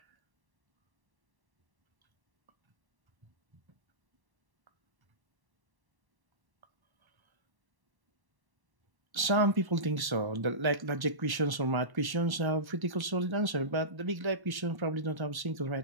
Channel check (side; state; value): left; late; 1.1 ms